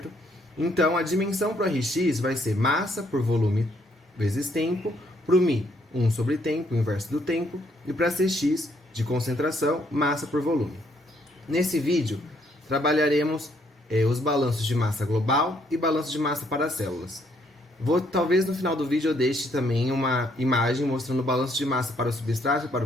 Então, a dimensão para o Rx vai ser massa por volume vezes tempo, para o μ, 1 sobre tempo, o inverso do tempo, e para Cx, de concentração, massa por volume. Nesse vídeo, trabalharemos os balanços de massa global e balanço de massa para as células. Talvez no final do vídeo eu deixe também uma imagem mostrando o balanço de massa para o substrato e para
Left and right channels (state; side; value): normal; both; correlation 0.70